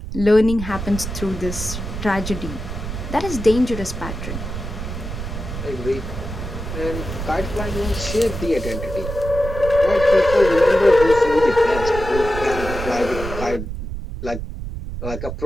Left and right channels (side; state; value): right; noise; rumble, 7 dB below the sound